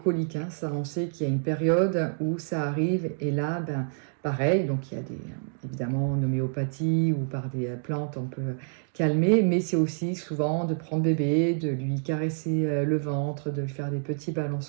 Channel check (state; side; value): silent; left; digital silence